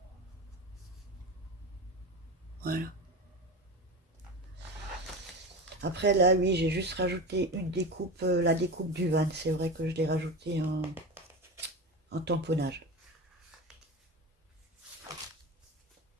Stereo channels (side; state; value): both; normal; correlation 0.26